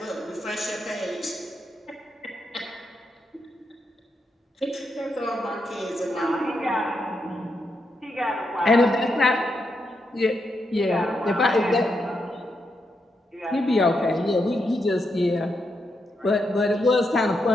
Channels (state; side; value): normal; both; correlation 0.83